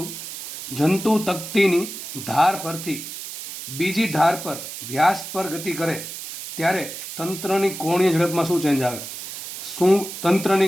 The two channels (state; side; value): noise; right; hiss, 9 dB below the sound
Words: જંતુ તકતીની ધાર પરથી બીજી ધાર પર વ્યાસ પર ગતિ કરે ત્યારે તંત્રની કોણીય ઝડપમાં શું ચેન્જ આવે? શું